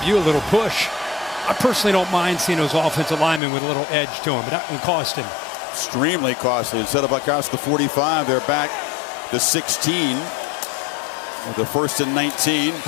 you a little push. I personally don't mind seeing those offensive linemen with a little edge to them, but that one cost him. Extremely costly. Instead of across the 45, they're back to 16. With the 1st and 19.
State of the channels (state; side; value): drops out; right; at 3.4 s